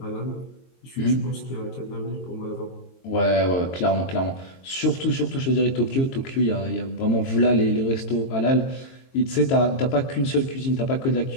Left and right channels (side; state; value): right; late; 22 ms